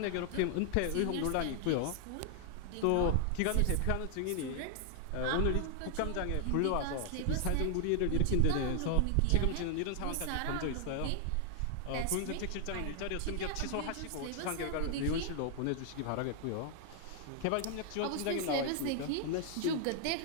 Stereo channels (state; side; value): different; both; correlation 0.00